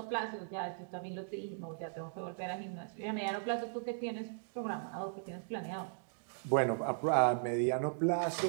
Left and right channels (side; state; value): left; silent; digital silence